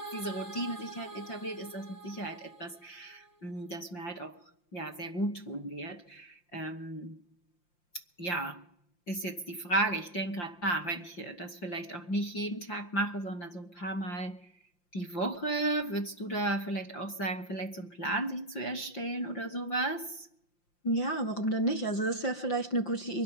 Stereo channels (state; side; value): late; right; 5.7 ms